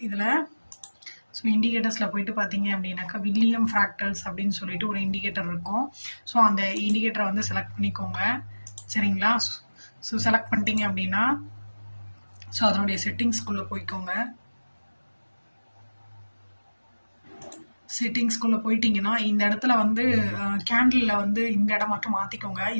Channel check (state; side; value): inverted; both; correlation -1.00